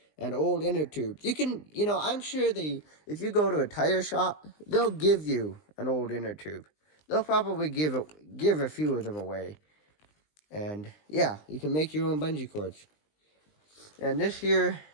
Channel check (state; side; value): late; right; 20 ms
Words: an old inner tube. You can, I'm sure if you go to a tire shop, they'll give you an old inner tube. They'll probably give a few of them away. And yeah, you can make your own bungee cords. And this here,